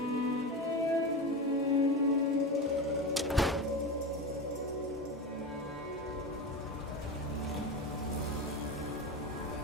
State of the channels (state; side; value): normal; both; correlation 0.22